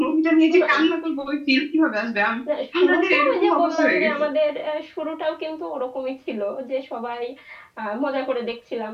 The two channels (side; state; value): both; identical; correlation 1.00